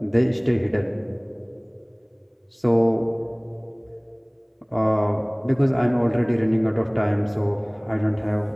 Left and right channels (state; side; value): identical; both; correlation 1.00